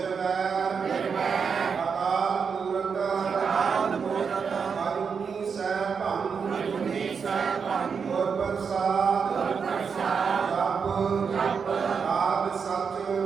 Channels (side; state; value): left; quieter; 6.0 dB